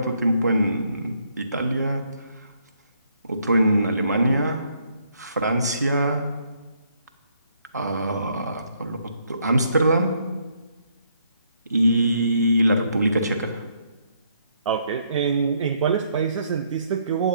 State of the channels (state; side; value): inverted; both; correlation -0.71